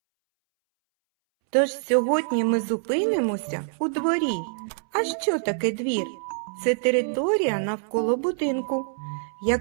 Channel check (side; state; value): left; silent; 62 dB below the other